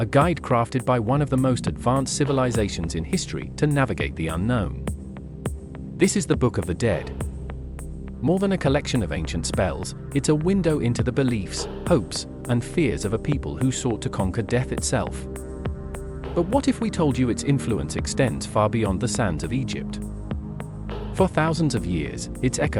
guide crafted by one of the most advanced civilizations in history to navigate the unknown. This is the Book of the Dead. More than a collection of ancient spells, it's a window into the beliefs, hopes, and fears of a people who sought to conquer death itself. But what if we told you its influence extends far beyond the sands of Egypt? For thousands of years, its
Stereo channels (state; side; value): identical; both; correlation 1.00